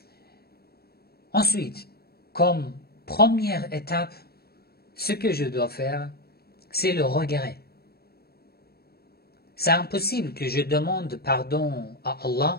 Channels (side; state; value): right; late; 0.46 ms